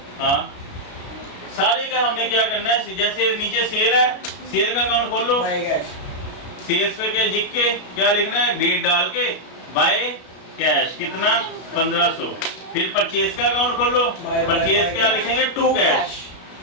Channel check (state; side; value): late; right; 32 ms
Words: हाँ, सारे का हमने क्या करना है, जैसे नीचे सेल है, सेल का अकाउंट खोल लो, बाय कैश, सेल्स पे क्या लिख के क्या लिखना है, डेट डाल के बाय कैश कितना 1500। फिर परचेज का अकाउंट खोल लो, परचेज क्या लिखेंगे, टू कैश